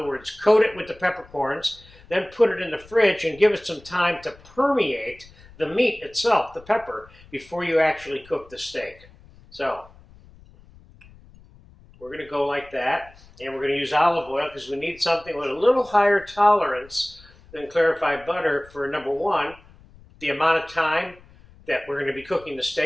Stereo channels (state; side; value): noise; left; rumble, 24 dB below the sound